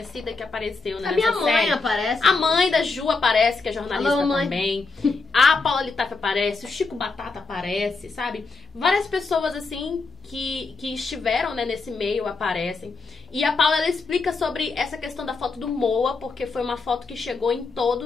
que apareceu nessa série. A minha mãe aparece. A mãe da Ju aparece, que é jornalista. Alô, mãe. Também. A Paula Litaif aparece, o Chico Batata aparece, sabe? Várias pessoas, assim, que estiveram, né, nesse meio aparecem. E a Paula, ela explica sobre essa questão da foto do Moa, porque foi uma foto que chegou em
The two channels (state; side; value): quieter; right; 4.1 dB